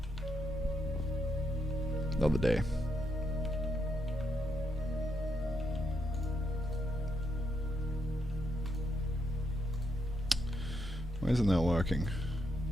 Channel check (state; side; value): normal; both; correlation 0.79